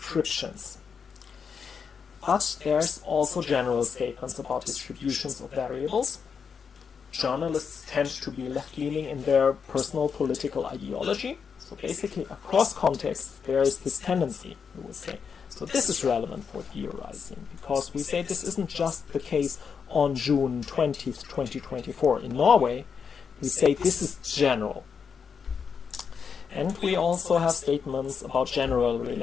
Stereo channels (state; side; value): quieter; right; 6.3 dB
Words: But there's also general statements about distributions of variables. Journalists tend to be left-leaning in their personal political ideology. So basically, across contexts, there is this tendency, we would say. So this is relevant for theorizing, because we say this isn't just the case on June 20th, 2024 in Norway. We say this is general. And we also have statements about general